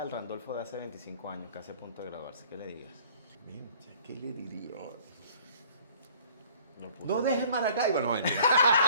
Randolfo de hace 25 años, casi a punto de graduarse? ¿Qué le dirías? ¿Qué le diría? No dejes Maracaibo, no mentira.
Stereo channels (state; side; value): inverted; both; correlation -0.53